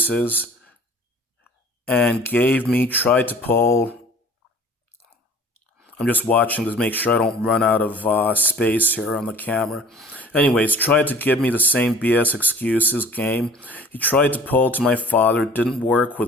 and tried to pull. I'm just watching to make sure I don't run out of space here on the camera. Anyways, tried to give me the same BS excuses game. He tried to pull to my father, didn't work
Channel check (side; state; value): both; normal; correlation 0.48